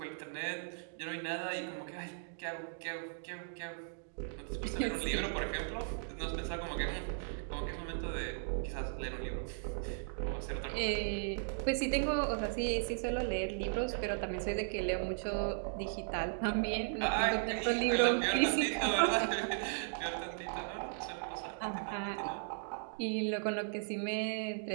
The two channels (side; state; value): left; silent; digital silence